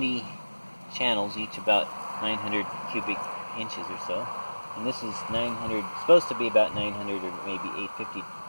channels, each about 900 cubic inches or so. And this is 900, supposed to be about 900 or maybe 850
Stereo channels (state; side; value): inverted; both; correlation -1.00